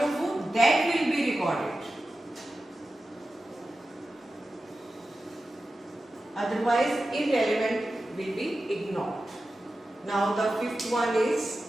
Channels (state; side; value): normal; both; correlation 0.93